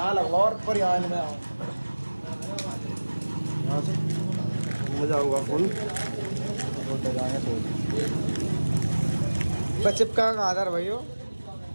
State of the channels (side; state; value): both; inverted; correlation -1.00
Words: लगवा और पर यहाँ में आओ यहाँ से मजा होगा फुल चिपका का आधार भाई हो